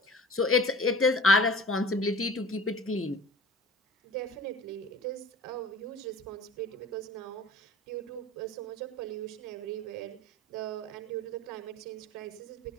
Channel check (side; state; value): both; normal; correlation 0.42